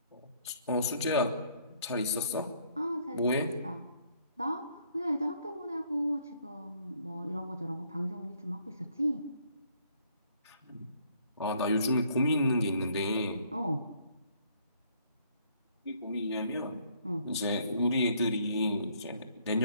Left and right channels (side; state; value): both; inverted; correlation -0.65